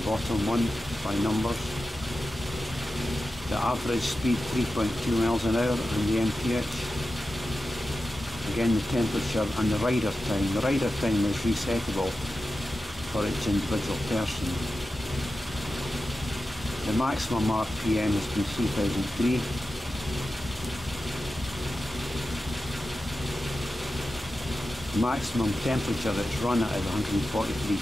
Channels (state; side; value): normal; both; correlation 0.92